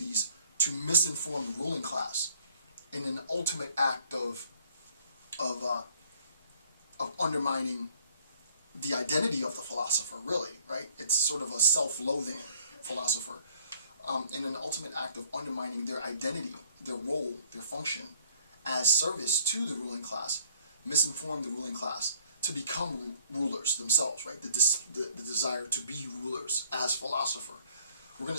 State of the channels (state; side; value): inverted; both; correlation -0.58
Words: to misinform the ruling class in an ultimate act of undermining the identity of the philosopher, really, right? It's sort of a self-loathing philosopher, in an ultimate act of undermining their identity, their role, their function as service to the ruling class, misinform the ruling class to become rulers themselves, right? The desire to be rulers as philosopher. We're going